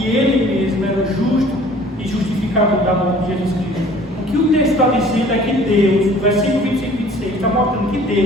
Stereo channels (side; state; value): both; normal; correlation 0.51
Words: Ele mesmo era justo e justificador da morte de Jesus Cristo. O que o texto está dizendo é que Deus, no versículo 25 e 26, está mostrando que